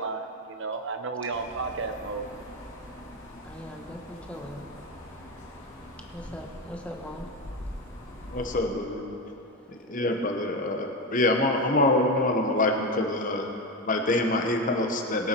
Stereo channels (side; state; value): both; normal; correlation 0.16